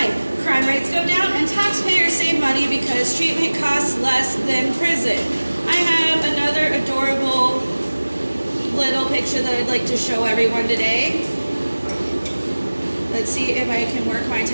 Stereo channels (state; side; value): inverted; both; correlation -1.00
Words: Crime rates go down, and taxpayers save money because treatment costs less than prison. I have another adorable little picture that I'd like to show everyone today. Let's see if I can work my